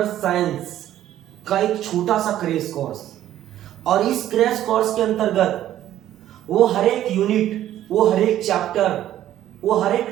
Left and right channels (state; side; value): quieter; left; 12.4 dB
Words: साइंस का एक छोटा सा क्रैश कोर्स। और इस क्रैश कोर्स के अंतर्गत वो हर एक यूनिट, वो हर एक चैप्टर, वो हर